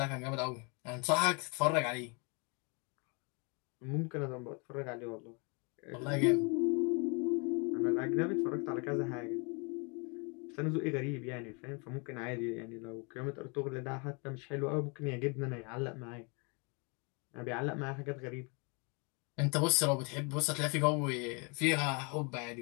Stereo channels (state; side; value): quieter; right; 33.0 dB